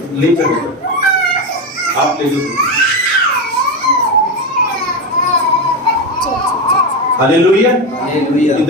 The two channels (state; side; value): normal; both; correlation 0.14